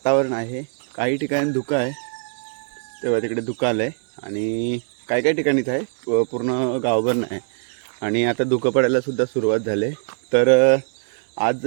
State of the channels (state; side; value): silent; left; 64 dB below the other